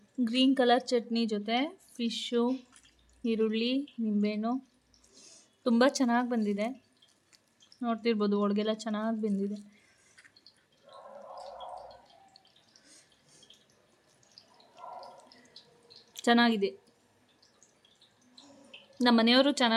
ಗ್ರೀನ್ ಕಲರ್ ಚಟ್ನಿ ಜೊತೆ ಫಿಶ್ಶು, ಈರುಳ್ಳಿ, ನಿಂಬೆಹಣ್ಣು ತುಂಬ ಚೆನ್ನಾಗಿ ಬಂದಿದೆ. ನೋಡ್ತಿರ್ಬೋದು ಒಳಗೆಲ್ಲ ಚೆನ್ನಾಗಿ ಬೆಂದಿದೆ. ಚೆನ್ನಾಗಿದೆ. ನಮ್ಮ ಮನೆಯವರು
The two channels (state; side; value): identical; both; correlation 1.00